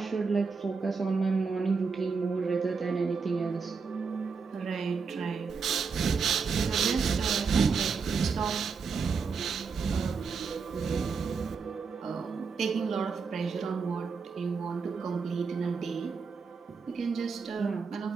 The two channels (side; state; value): left; quieter; 5.3 dB